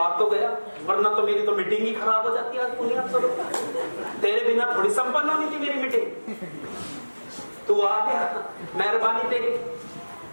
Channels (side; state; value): both; inverted; correlation -1.00